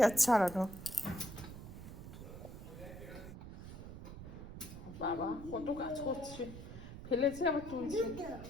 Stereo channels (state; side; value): noise; right; rumble, 11 dB below the sound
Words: ছড়ানো। বাবা কত কাজ করছে, ফেলেছে আবার